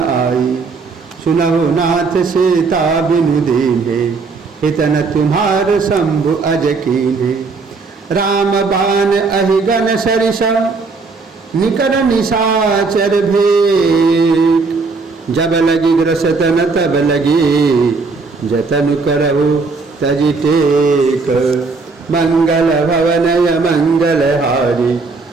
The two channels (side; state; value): left; quieter; 4.3 dB